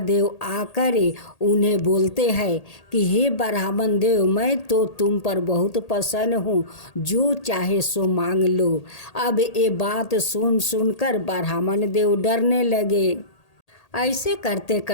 देव आकर उन्हें बोलते हैं कि हे ब्राह्मण देव, मैं तो तुम पर बहुत प्रसन्न हूँ, जो चाहे सो मांग लो। अब ये बात सुनकर ब्राह्मण देव डरने लगे। ऐसे करते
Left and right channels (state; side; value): late; right; 1.8 ms